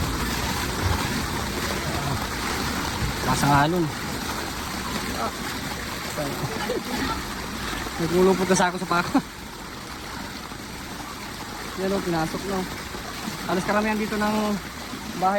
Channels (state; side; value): identical; both; correlation 1.00